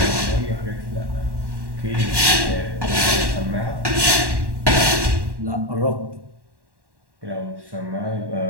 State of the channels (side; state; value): left; late; 1.1 ms